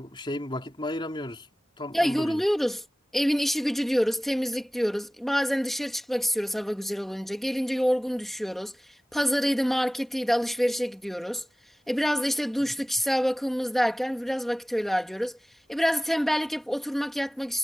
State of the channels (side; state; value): both; normal; correlation 0.97